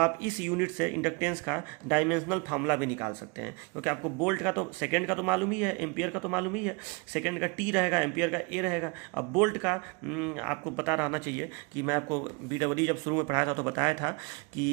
इस यूनिट से इंडक्टेंस का डायमेंशनल फार्मूला भी निकाल सकते हैं, क्योंकि आपको वोल्ट का तो सेकेंड का तो मालूम ही है, एम्पियर का तो मालूम ही है, सेकेंड का टी रहेगा, एम्पियर का ए रहेगा। अब वोल्ट का आपको पता रहना चाहिए कि मैं आपको BEE जब शुरू में पढ़ाया था तो बताया था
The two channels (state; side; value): quieter; left; 29.7 dB